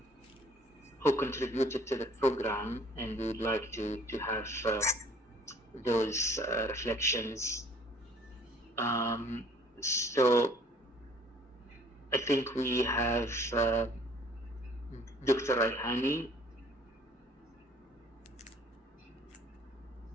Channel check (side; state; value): both; normal; correlation 0.56